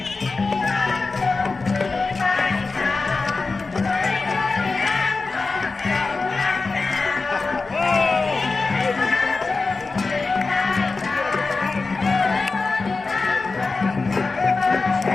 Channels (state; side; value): quieter; right; 4.0 dB